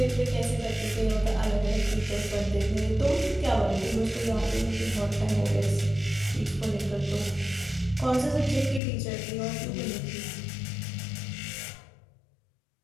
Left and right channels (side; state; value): right; drops out; at 8.8 s